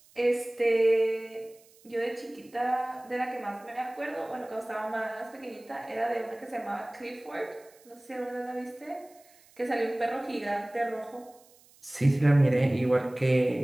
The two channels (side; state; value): right; noise; hiss, 28 dB below the sound